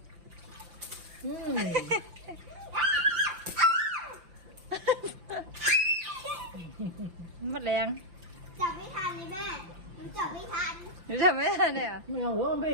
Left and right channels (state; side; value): late; left; 5.5 ms